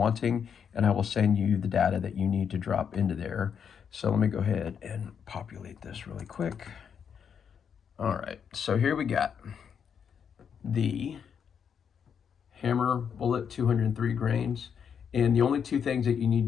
and I will send you the data that you need to drop into there. So let me go ahead and populate this really quick. All right, so here we got the hammer bullet, 203 grains. And the only two things that you need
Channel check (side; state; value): right; quieter; 7.4 dB